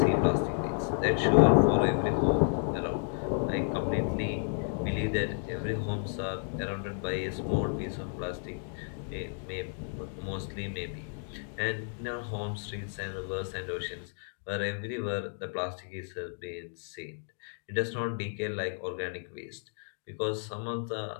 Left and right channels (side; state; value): right; silent; 57 dB below the other